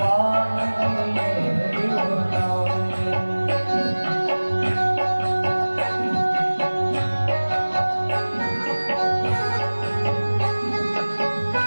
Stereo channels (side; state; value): both; inverted; correlation -1.00